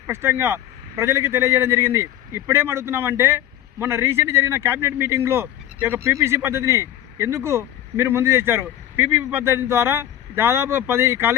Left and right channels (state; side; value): quieter; right; 12.2 dB